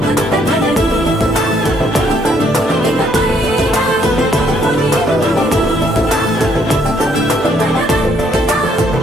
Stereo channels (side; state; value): both; normal; correlation 0.69